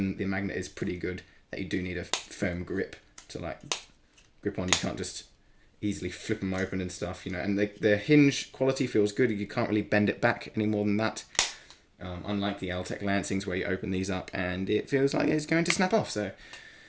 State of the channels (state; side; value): identical; both; correlation 1.00